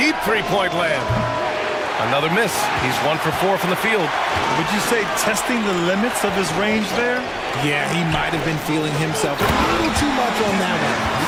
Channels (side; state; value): both; identical; correlation 1.00